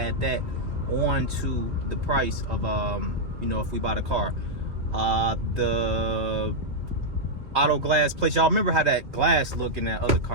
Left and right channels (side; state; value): left; late; 2.8 ms